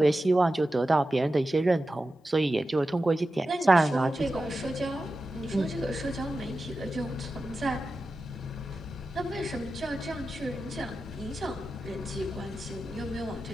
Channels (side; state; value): both; normal; correlation 0.92